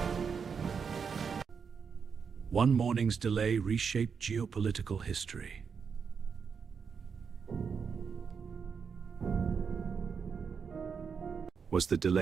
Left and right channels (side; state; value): left; quieter; 6.2 dB